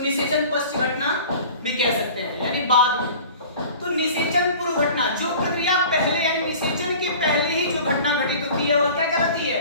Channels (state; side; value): inverted; both; correlation -0.43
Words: निषेचन पश्च घटना भी कह सकते हैं, यानी बाद में। तो निषेचन पूर्व घटना, जो प्रक्रिया पहले यानी निषेचन के पहले ही जो घटना घटित होती है वह क्या कहलाती है?